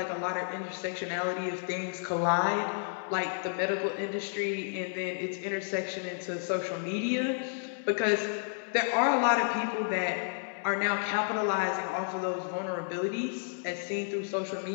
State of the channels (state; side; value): silent; right; digital silence